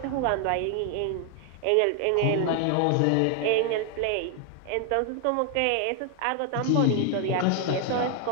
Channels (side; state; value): both; different; correlation 0.00